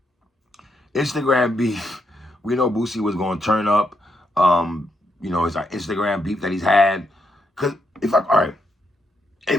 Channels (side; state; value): both; normal; correlation 0.79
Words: Instagram beef, we know Boosie was going to turn up. You know, it's our Instagram beef that he's had. Because if I